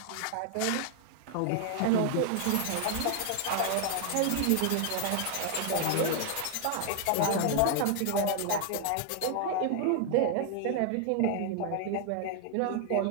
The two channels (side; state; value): both; different; correlation 0.00